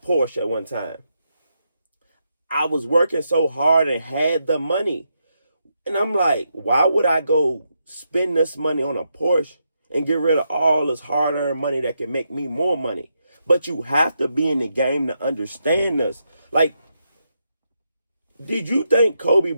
at one time. I was working so hard and had the money. And I'm like, why would I go spend this money on a Porsche and get rid of all this hard-earned money that can make me more money? But you have to be in the game to understand this. Like, did you think Kobe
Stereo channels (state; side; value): inverted; both; correlation -0.82